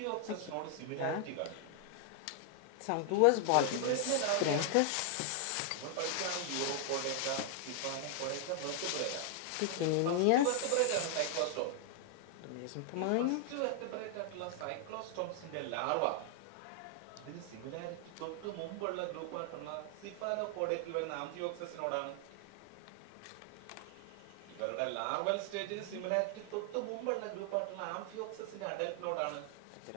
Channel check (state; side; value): different; both; correlation 0.00